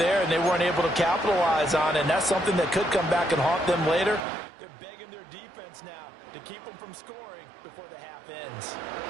and they weren't able to capitalize on it, and that's something that could come back and haunt them later. They're begging their defense now to keep them from scoring before the half ends.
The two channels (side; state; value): left; drops out; at 4.2 s